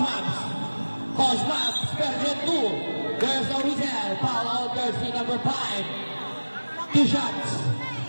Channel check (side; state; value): both; inverted; correlation -1.00